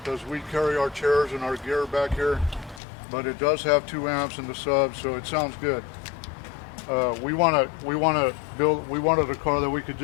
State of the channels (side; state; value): right; drops out; at 2.8 s